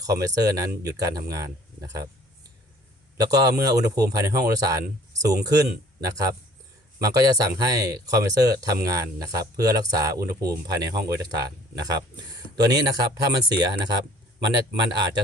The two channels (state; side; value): normal; both; correlation 0.54